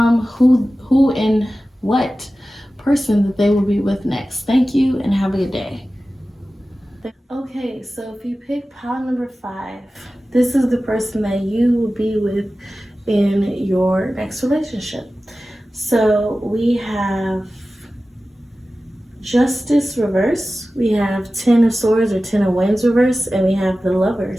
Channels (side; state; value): both; normal; correlation 0.95